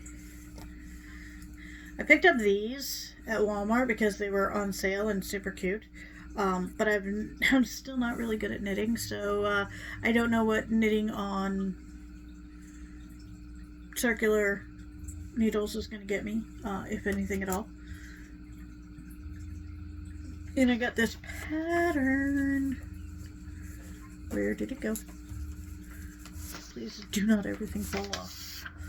picked up these at Walmart because they were on sale and super cute. But I'm still not really good at knitting, so I don't know what knitting on circular needles is going to get me, if anything at all. And I got this pattern. Where did it go? Please do not everything fall off.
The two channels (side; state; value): both; identical; correlation 1.00